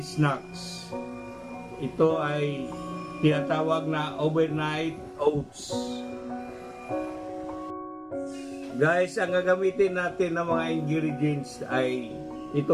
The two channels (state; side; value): identical; both; correlation 1.00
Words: snacks. Ito ay tinatawag na overnight oats. Guys, ang gagamitin natin ng mga ingredients ay